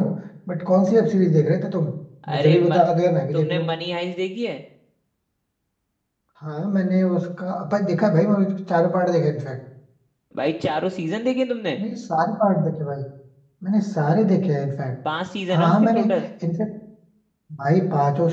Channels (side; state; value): both; identical; correlation 1.00